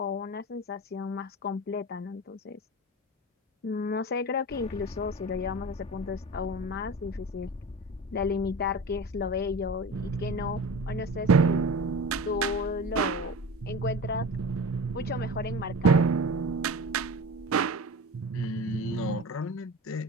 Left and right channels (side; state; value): both; normal; correlation 0.33